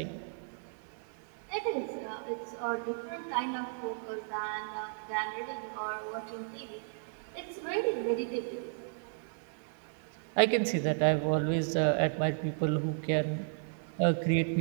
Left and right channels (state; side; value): silent; left; digital silence